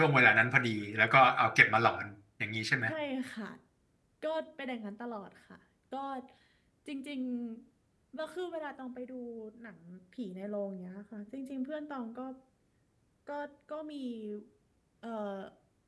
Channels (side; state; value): both; identical; correlation 1.00